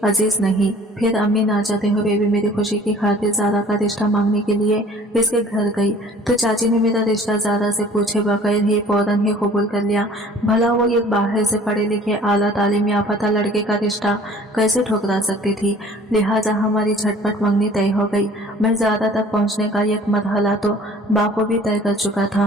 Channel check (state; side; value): normal; both; correlation 0.50